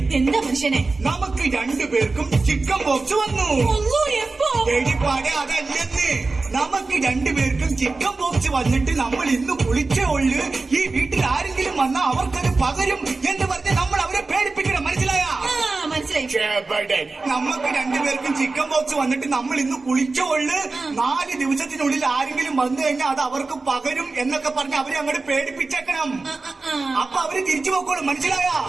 എന്താ മനുഷ്യനെ? നമുക്ക് രണ്ടുപേർക്കും ചിക്കൻ ബോക്സ് വന്നു. ഒന്നോ എപ്പോ? എടിപ്പാടെ അതല്ലെന്ന്. നമുക്ക് രണ്ടുപേർക്കും ചിക്കൻ ബോക്സ് വന്നിട്ട് നമ്മൾ ഇന്ന് കുളിച്ചേ ഉള്ളു. ഈ വീട്ടിൽ ആരെങ്കിലും വന്നാൽ അവർക്കത് പകരും എന്ന് പറഞ്ഞ് നമ്മൾ അവരെ പേടിപ്പിക്കണം. മനസ്സിലായ? മനസ്സിലായി. നമുക്ക് രണ്ടുപേർക്കും ചിക്കൻ ബോക്സ് വന്നിട്ട് നമ്മൾ ഇന്ന് കുളിച്ചേ ഉള്ളു. 4 ദിവസത്തിനുള്ളിൽ ആരെങ്കിലും വന്നു കഴിഞ്ഞാൽ അത് അവർക്ക് പകരും എന്നൊക്കെ പറഞ്ഞ് അവരെ അങ്ങോട്ട് പേടിപ്പിച്ചേക്കണം. അപ്പൊ അവര് തിരിച്ചു പോക്കോളും. മനസ്സിലായ?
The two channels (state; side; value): quieter; left; 3.7 dB